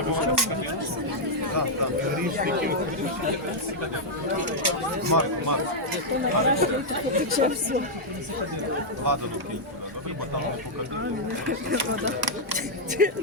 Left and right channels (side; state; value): both; normal; correlation -0.04